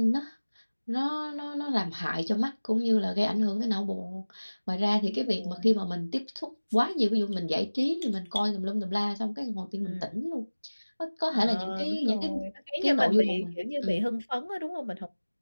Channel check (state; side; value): inverted; both; correlation -1.00